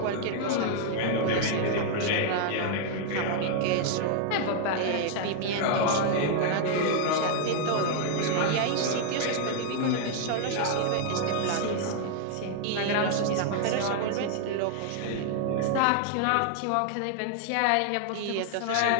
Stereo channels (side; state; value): both; different; correlation 0.00